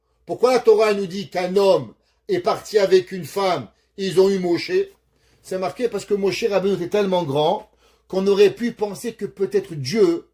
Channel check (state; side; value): identical; both; correlation 1.00